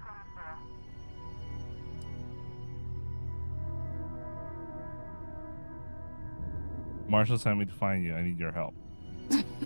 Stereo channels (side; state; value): both; inverted; correlation -1.00